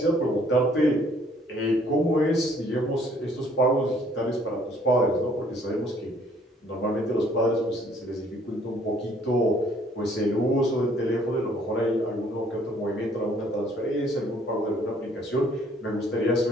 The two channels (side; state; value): both; normal; correlation 0.61